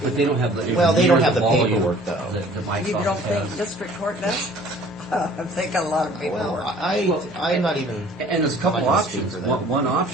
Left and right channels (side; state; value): both; normal; correlation 0.52